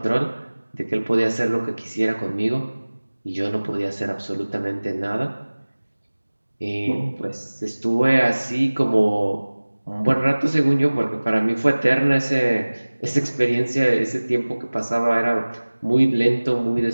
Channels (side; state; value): both; inverted; correlation -1.00